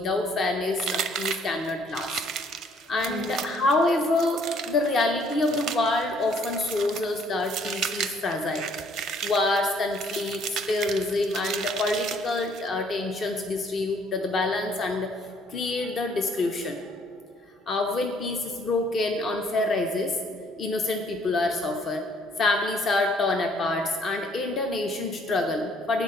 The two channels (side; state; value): both; normal; correlation 0.63